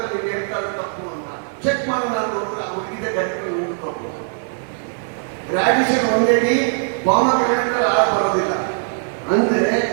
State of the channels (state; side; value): silent; left; 65 dB below the other